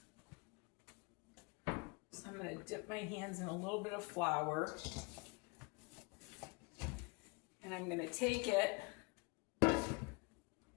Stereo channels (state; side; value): quieter; right; 29.5 dB